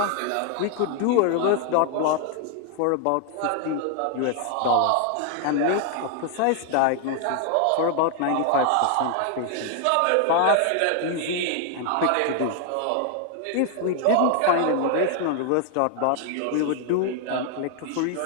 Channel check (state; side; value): different; both; correlation 0.00